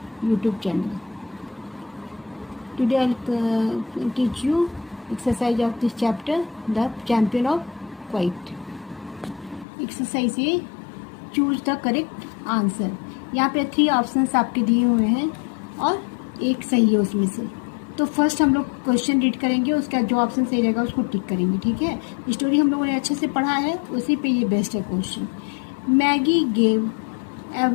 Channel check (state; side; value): drops out; right; at 9.7 s